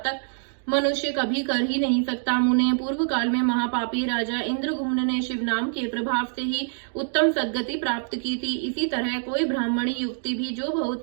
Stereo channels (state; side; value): silent; left; digital silence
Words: मनुष्य कभी कर ही नहीं सकता। मुने, पूर्व काल में महापापी राजा इंद्रगुम्न ने शिव नाम के प्रभाव से ही उत्तम सद्गति प्राप्त की थी। इसी तरह कोई ब्राह्मणी युक्ति भी जो